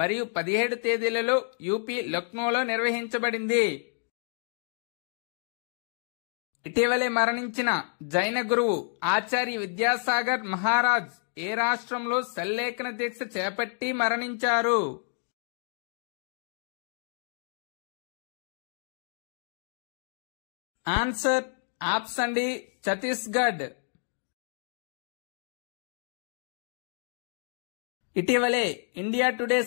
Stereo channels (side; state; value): right; silent; 58 dB below the other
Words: 17 తేదీలలో యూపీ లక్నోలో నిర్వహించబడింది. ఇటీవలే మరణించిన జైన గురువు ఆచార్య విద్యాసాగర్ మహారాజ్ ఏ రాష్ట్రంలో సల్లేఖన దీక్ష చేపట్టి మరణించారు? Answer option D Chhattisgarh. ఇటీవలే ఇండియా టుడే